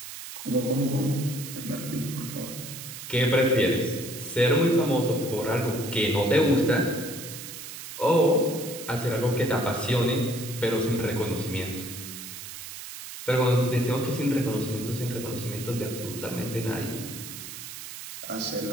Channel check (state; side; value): noise; right; hiss, 11 dB below the sound